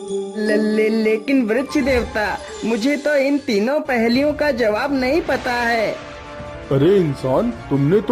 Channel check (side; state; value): both; identical; correlation 1.00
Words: लेकिन वृक्ष देवता, मुझे तो इन तीनों पहेलियों का जवाब नहीं पता है। अरे इंसान, तुमने